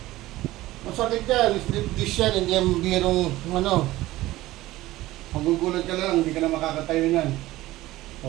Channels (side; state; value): left; quieter; 17.0 dB